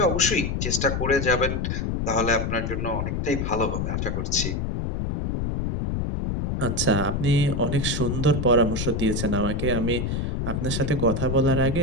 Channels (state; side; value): noise; left; rumble, 1 dB below the sound